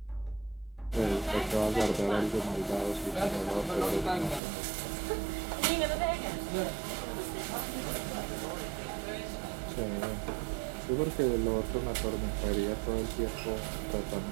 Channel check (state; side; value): drops out; left; at 4.4 s